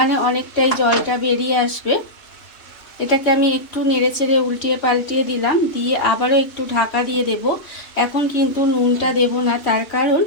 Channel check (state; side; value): late; right; 3.1 ms